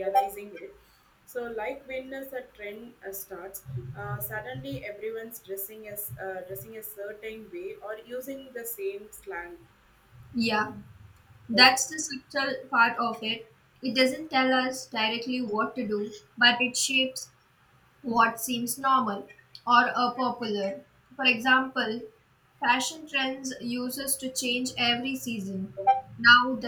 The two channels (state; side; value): identical; both; correlation 1.00